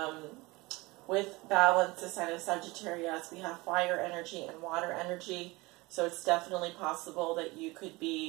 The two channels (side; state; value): left; quieter; 22.9 dB